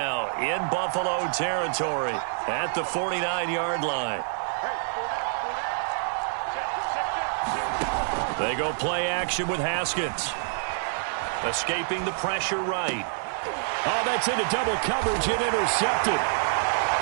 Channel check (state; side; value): silent; left; 60 dB below the other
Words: in Buffalo territory at the 49-yard line. They go play action with Haskins. Escaping the pressure right. Oh, that's into double coverage and intercepted.